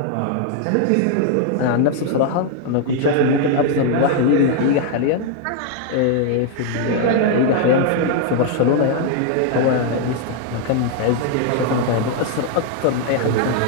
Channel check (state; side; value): different; both; correlation 0.00